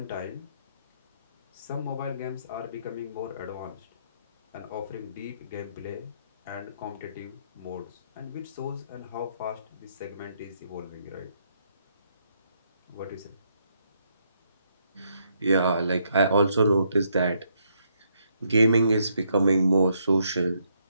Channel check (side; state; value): both; inverted; correlation -0.74